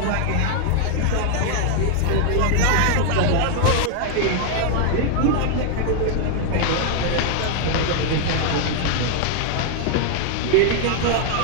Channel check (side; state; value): both; different; correlation 0.00